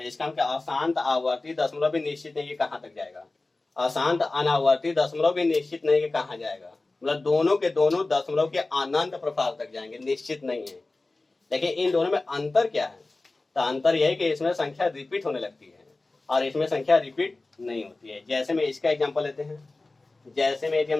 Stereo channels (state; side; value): quieter; right; 3.2 dB